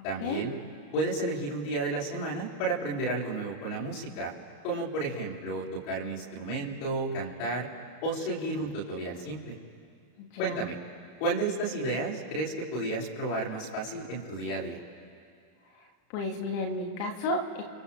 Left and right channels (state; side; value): late; right; 34 ms